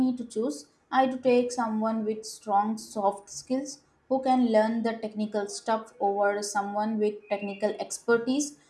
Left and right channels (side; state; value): both; identical; correlation 1.00